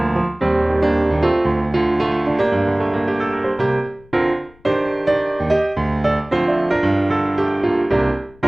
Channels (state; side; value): noise; left; rumble, 27 dB below the sound